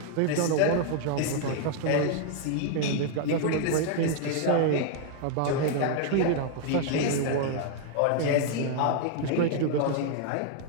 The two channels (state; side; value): different; both; correlation 0.00